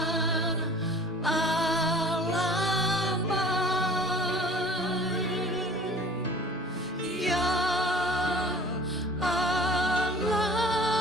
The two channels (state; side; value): normal; both; correlation 0.47